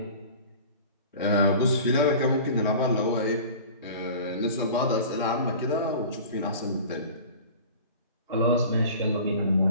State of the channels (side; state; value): both; inverted; correlation -0.41